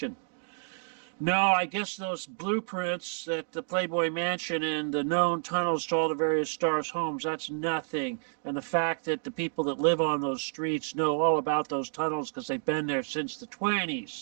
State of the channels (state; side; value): silent; left; 58 dB below the other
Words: No, I guess those blueprints at the Playboy Mansion and the known tunnels to all the various stars' homes, that's nothing. And the fact that the people that live on those streets know all about those tunnels because they've been there since the